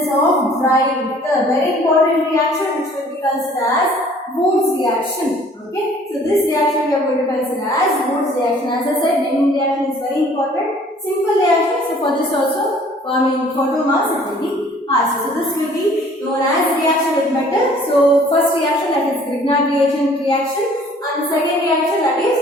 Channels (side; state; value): both; normal; correlation 0.55